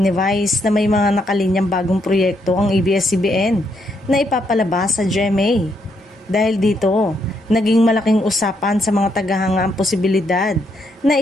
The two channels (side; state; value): both; normal; correlation 0.76